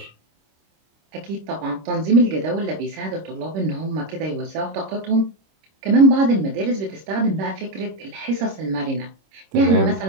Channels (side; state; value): left; late; 26 ms